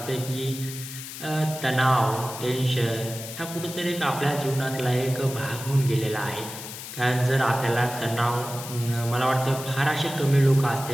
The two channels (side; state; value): left; noise; hiss, 10 dB below the sound